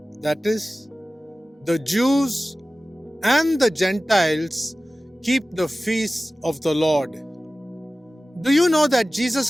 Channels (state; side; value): normal; both; correlation 0.96